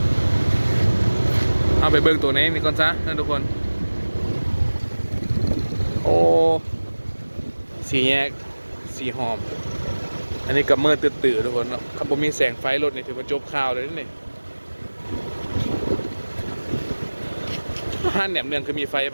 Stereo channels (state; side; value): inverted; both; correlation -1.00